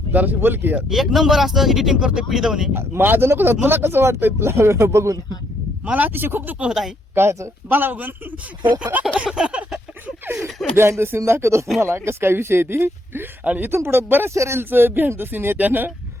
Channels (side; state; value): both; normal; correlation 0.73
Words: जराशी बोल की यार. एक नंबर असतं एडिटिंग करतोय पिढी माझं नको तुला कसं वाटतंय तुला बघून. मला अतिशय खूप दुःख होत आहे कायचं मला बघून. बिहाइंड द सीन दाखवतो तुम्हाला कसं काय विषय आहे ती. आणि इथून पुढे बऱ्याचशा रील्स बिहाइंड द सीन आहे त्यानं